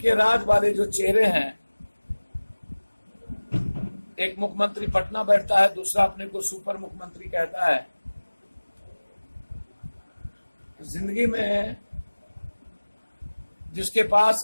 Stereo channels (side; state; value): both; inverted; correlation -1.00